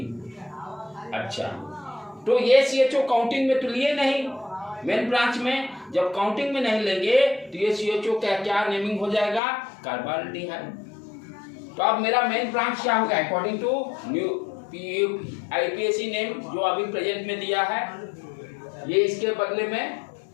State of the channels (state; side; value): drops out; right; at 9.4 s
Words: अच्छा, तो ये CHO काउंटिंग में तो लिए नहीं, मेन ब्रांच में जब काउंटिंग में नहीं लेंगे तो ये CHO का क्या नेमिंग हो जाएगा, कार्बाल्डिहाइड। तो अब मेरा मेन ब्रांच क्या होगा, according to new IUPAC name जो अभी प्रेजेंट में दिया है, ये इसके बदले में